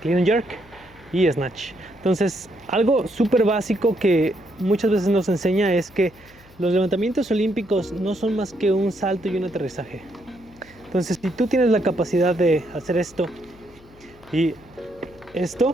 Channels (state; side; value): noise; left; hum, 25 dB below the sound